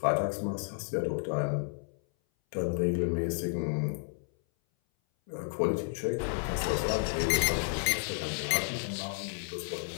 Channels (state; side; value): silent; right; 57 dB below the other